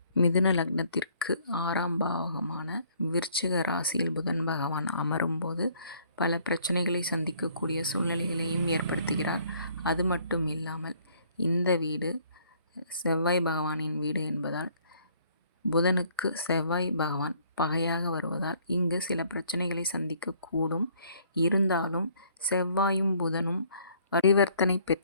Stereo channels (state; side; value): inverted; both; correlation -0.62